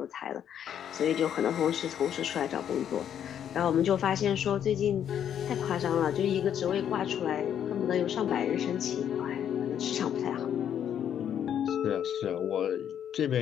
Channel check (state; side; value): quieter; right; 9.4 dB